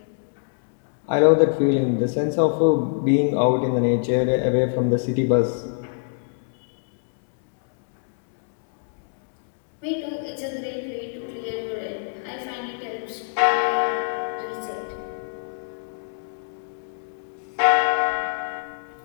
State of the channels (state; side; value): silent; right; digital silence